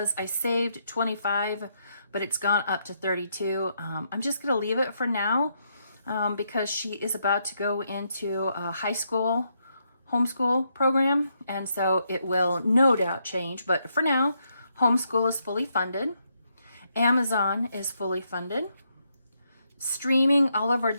I saved 25, but it's gone up to 32. I'm just going to leave it for now because she is about to go into a high school homeschool program. And so it will no doubt change. But for now, homeschool is fully funded. Amazon is fully funded. Streaming, all of our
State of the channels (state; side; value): inverted; both; correlation -0.78